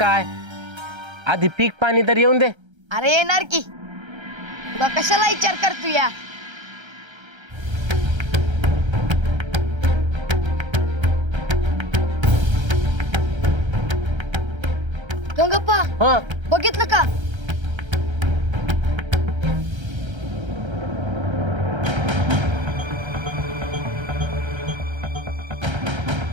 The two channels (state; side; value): late; left; 1.3 ms